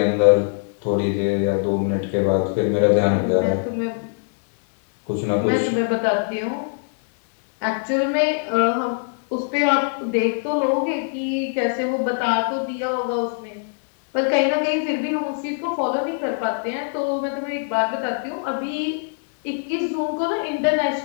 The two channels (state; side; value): silent; right; digital silence